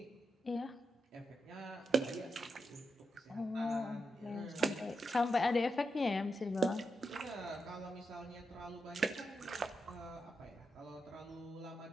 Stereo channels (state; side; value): normal; both; correlation 0.86